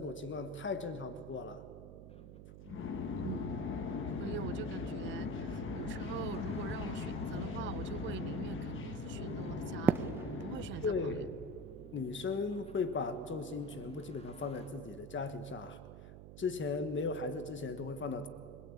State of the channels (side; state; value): right; noise; hum, 12 dB below the sound